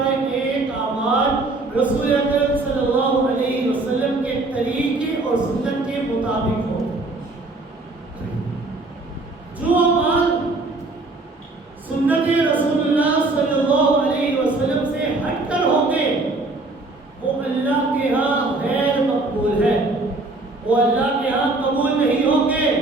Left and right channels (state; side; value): quieter; left; 3.1 dB